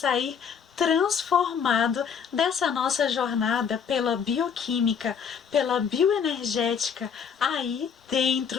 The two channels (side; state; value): right; quieter; 7.0 dB